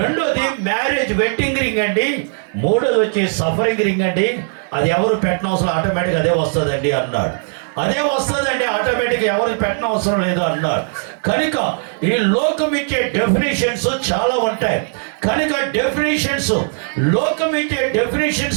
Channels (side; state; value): left; silent; 65 dB below the other